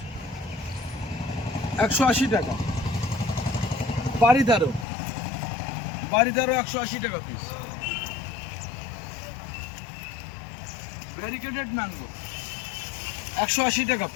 180 টাকা। বাড়িদারও 180 টাকা পিস। ভ্যারিকেটেড ম্যাঙ্গো 180 টাকা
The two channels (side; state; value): right; drops out; at 4.9 s